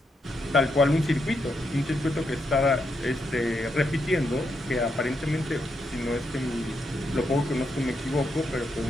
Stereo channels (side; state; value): both; normal; correlation 0.81